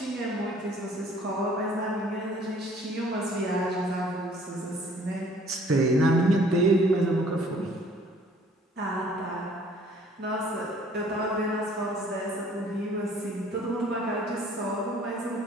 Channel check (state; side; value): normal; both; correlation 0.56